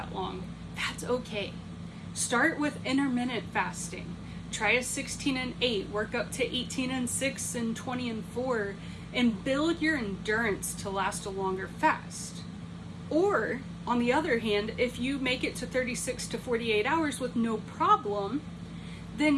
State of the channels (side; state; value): both; identical; correlation 1.00